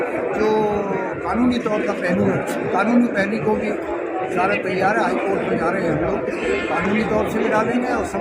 जो कानूनी तौर का पहलू है, कानूनी पहलू को भी सारा तैयार है, हाईकोर्ट में जा रहे हैं हम लोग, कानूनी तौर से भी डालेंगे और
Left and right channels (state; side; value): identical; both; correlation 1.00